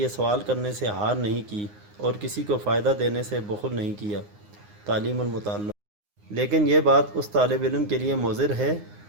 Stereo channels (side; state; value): left; late; 9.7 ms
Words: سوال کرنے سے ہار نہیں کی اور کسی کو فائدہ دینے سے بخل نہیں کیا۔ تعلیم المتعلم: لیکن یہ بات اس طالب علم کے لیے مضر ہے